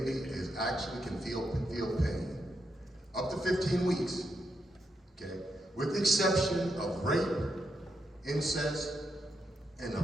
can feel pain. Up to 15 weeks, okay? With the exception of rape, incest, and the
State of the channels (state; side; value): normal; both; correlation 0.82